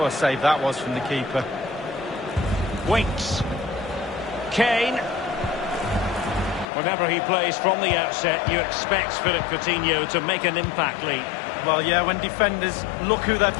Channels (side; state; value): right; drops out; at 6.7 s